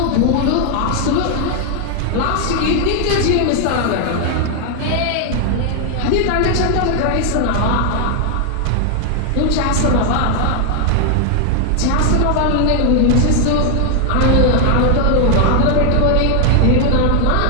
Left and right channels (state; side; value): different; both; correlation 0.00